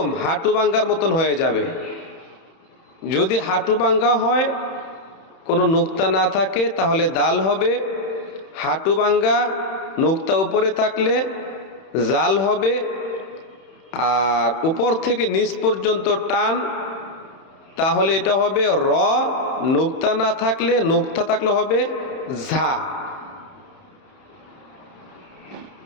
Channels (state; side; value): late; right; 31 ms